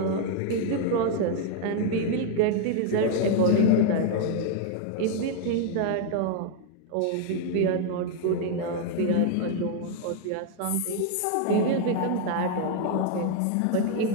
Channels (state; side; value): different; both; correlation 0.00